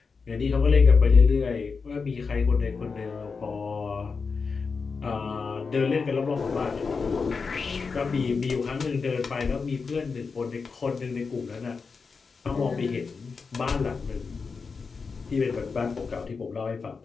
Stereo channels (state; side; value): quieter; right; 5.0 dB